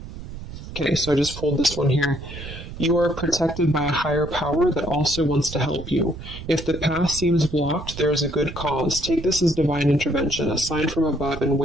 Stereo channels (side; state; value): right; noise; rumble, 11 dB below the sound